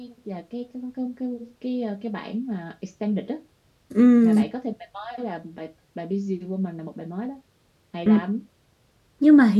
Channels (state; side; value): identical; both; correlation 1.00